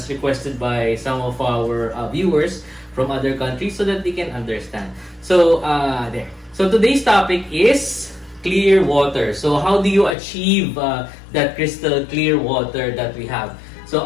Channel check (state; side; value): drops out; right; at 10.2 s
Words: requested by some of our viewers from other countries so that they can understand. So there. So today's topic is clear water. So how do you achieve that crystal clear water that we have? So